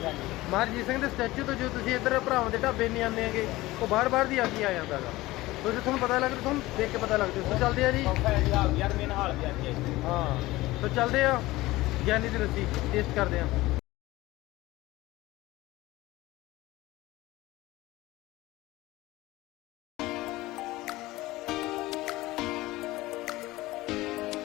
ਹਾਂਜੀ ਮਹਾਰਾਜ ਜੀ ਸਿੰਘ ਦੇ ਸਟੈਚੂ ਤੋਂ ਜੋ ਤੁਸੀਂ ਇੱਧਰ ਭਰਾਵਾਂ ਦੇ ਢਾਬੇ ਨਹੀਂ ਆਉਂਦੇ ਹੈਗੇ ਉਹ ਬਾਹਰ ਦੀ ਆ ਕੇ ਆ ਜਾਂਦਾ ਹੈਗਾ। ਤੁਸੀਂ ਤੁਹਾਨੂੰ ਪਤਾ ਲੱਗ ਤੁਹਾਨੂੰ ਦੇਖ ਕੇ ਪਤਾ ਲੱਗਦਾ। ਸੋ ਚੱਲਦੇ ਆ ਜੀ। ਸੌਖਾ ਹੈ ਜੀ ਹਾਲ ਬਾਜ਼ਾਰ ਮੇਨ ਹਾਲ ਬਾਜ਼ਾਰ ਜੀ। ਹਾਂ ਸੋ ਚੱਲਦੇ ਆ ਗਿਆਨੀ ਦੀ ਲੱਸੀ ਟੇਸਟ ਕਰਦੇ ਆ।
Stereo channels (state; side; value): quieter; right; 18.7 dB